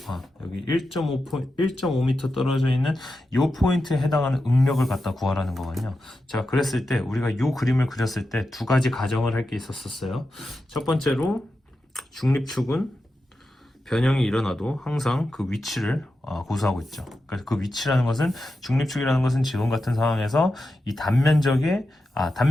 떨어져 있는 요 포인트에 해당하는 응력을 갖다 구하라는 거거든요. 자, 그랬을 때 우리가 요 그림을 그렸을 때 두 가지 가정을 할 게 있었어요. 첫 번째로 중립축은 변형이 일어나도 항상 그 위치를 고수하고 있죠. 그래서 그 위치라는 것은, 중립축이라는 것은 지금 같은 상황에서 이 단면적의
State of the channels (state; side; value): normal; both; correlation 0.90